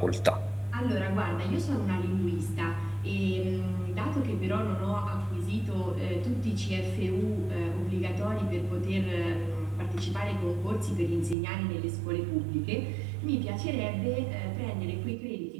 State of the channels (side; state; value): left; drops out; at 11.4 s